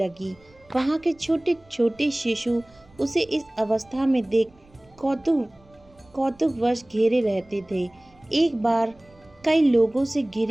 वहां के छोटे छोटे शिशु उसे इस अवस्था में देख कौतुकवश घेरे रहते थे। एक बार कई लोगों से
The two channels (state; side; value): noise; right; rumble, 29 dB below the sound